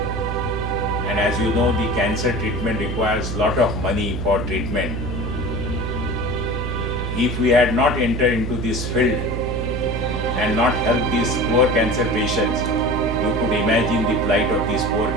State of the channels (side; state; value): right; noise; hum, 4 dB below the sound